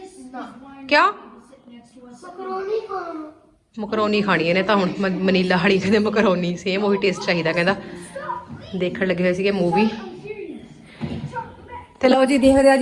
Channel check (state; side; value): identical; both; correlation 1.00